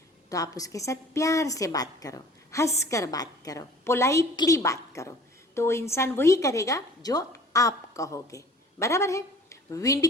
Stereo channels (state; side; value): normal; both; correlation 0.48